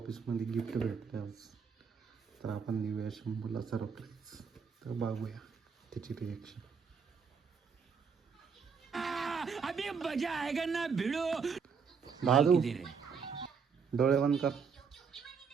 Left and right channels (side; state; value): left; quieter; 6.0 dB